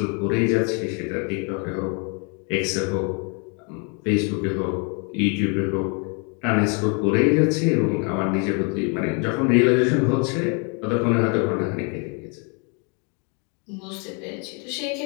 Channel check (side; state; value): right; quieter; 36.1 dB